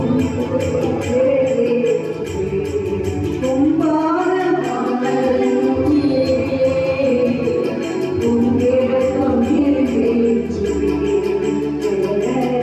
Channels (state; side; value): identical; both; correlation 1.00